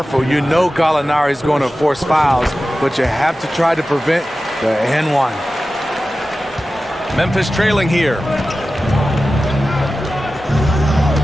You know Gallinari is going to force fouls, but you have to try to prevent the N1. Memphis trailing here.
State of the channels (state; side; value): normal; both; correlation 0.94